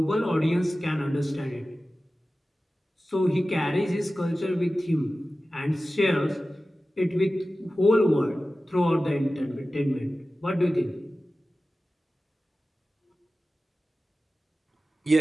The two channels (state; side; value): normal; both; correlation 0.95